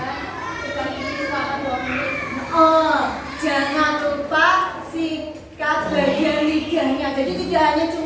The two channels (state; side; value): identical; both; correlation 1.00